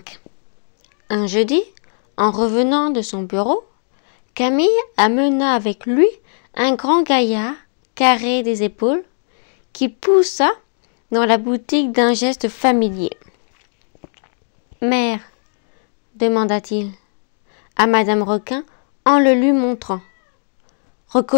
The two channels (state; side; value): silent; right; digital silence